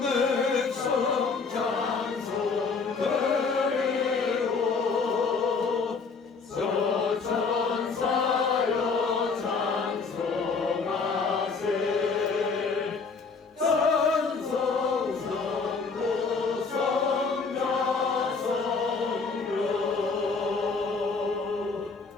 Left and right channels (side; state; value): right; quieter; 4.7 dB